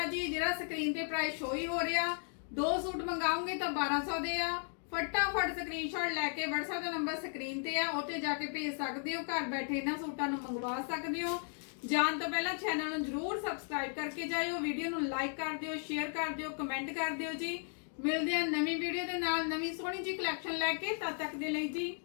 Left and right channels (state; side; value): silent; right; 54 dB below the other